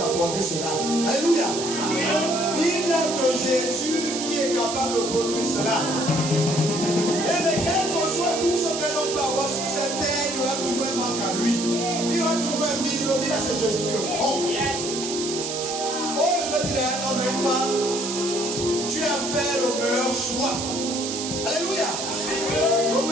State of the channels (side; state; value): right; noise; hiss, 5 dB below the sound